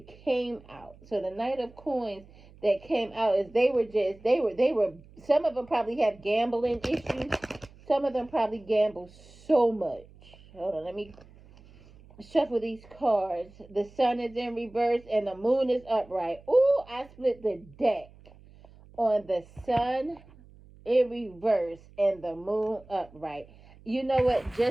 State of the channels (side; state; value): right; noise; hum, 24 dB below the sound